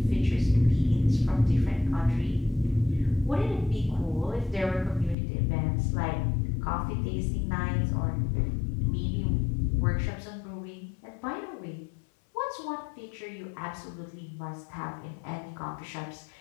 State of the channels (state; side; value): drops out; right; at 5.2 s